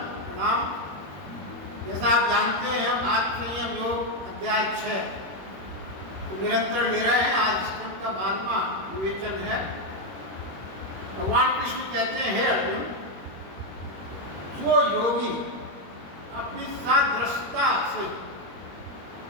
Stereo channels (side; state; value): left; late; 21 ms